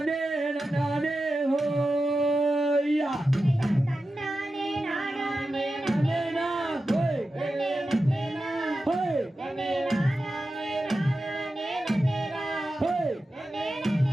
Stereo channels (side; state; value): both; normal; correlation 0.92